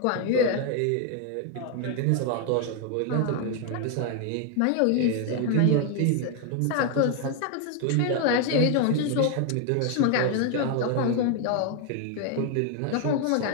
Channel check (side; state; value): both; different; correlation 0.01